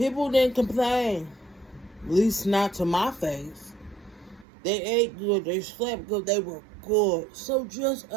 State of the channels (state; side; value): drops out; left; at 4.5 s